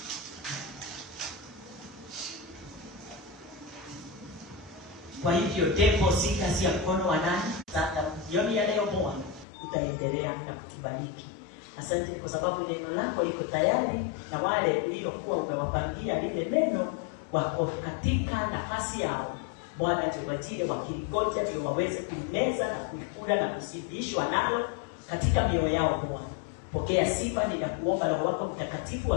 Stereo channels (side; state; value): right; drops out; at 9.5 s